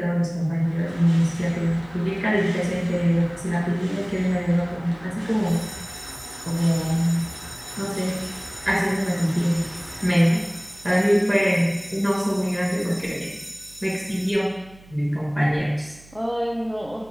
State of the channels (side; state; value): right; noise; hum, 24 dB below the sound